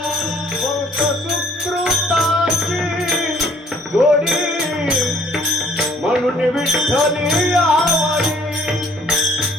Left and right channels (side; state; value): both; normal; correlation 0.60